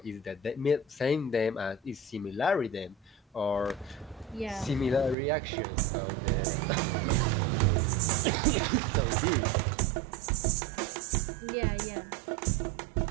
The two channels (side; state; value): left; drops out; at 5.2 s